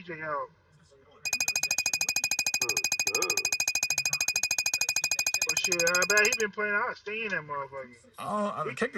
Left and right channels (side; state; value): both; identical; correlation 1.00